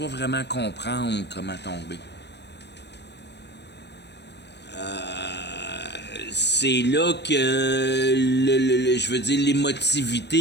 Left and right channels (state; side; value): late; right; 0.50 ms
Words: pas vraiment comprendre comment tomber. C'est là que, je veux dire,